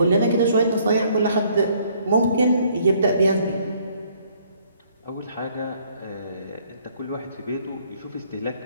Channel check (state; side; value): inverted; both; correlation -0.64